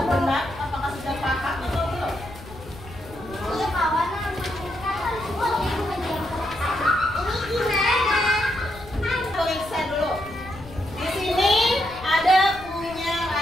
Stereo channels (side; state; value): left; noise; rumble, 16 dB below the sound